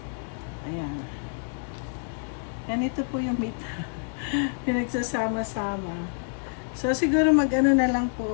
Ayan. Ganito po yung meat. Pinagsasama-sama. So, siguro mag-ano na lang po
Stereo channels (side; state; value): right; silent; 60 dB below the other